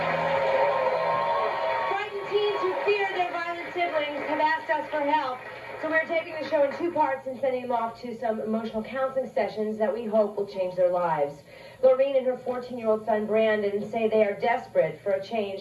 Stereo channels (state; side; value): identical; both; correlation 1.00